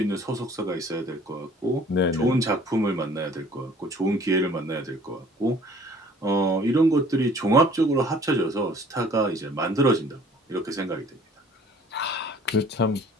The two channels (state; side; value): normal; both; correlation 0.53